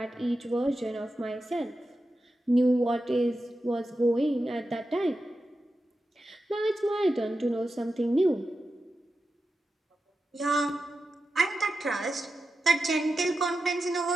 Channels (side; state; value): both; normal; correlation 0.91